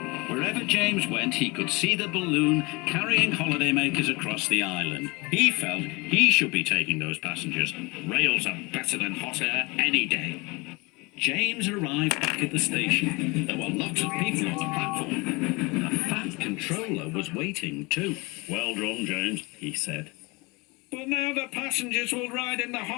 Wherever James went, he could see the balloon carrying holidaymakers across the island. He felt he should be taking those passengers. Rails are better than hot air any day. James arrived back at the station. There were lots of people on the platform. The Fat Controller was waiting too. "Well done, James," he said. "But now the passengers will ride in the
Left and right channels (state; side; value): quieter; right; 26.0 dB